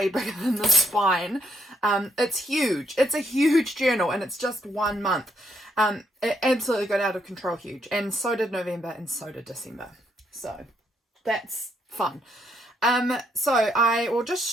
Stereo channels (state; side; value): normal; both; correlation 0.74